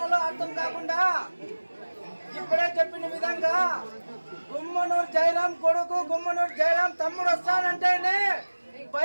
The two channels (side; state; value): both; inverted; correlation -1.00